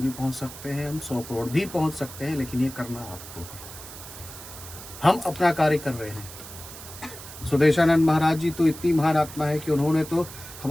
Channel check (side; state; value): right; noise; hiss, 14 dB below the sound